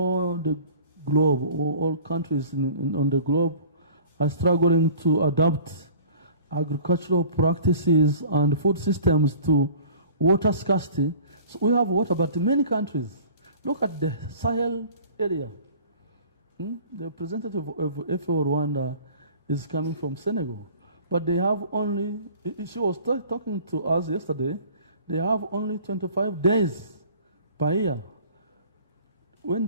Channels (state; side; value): inverted; both; correlation -0.47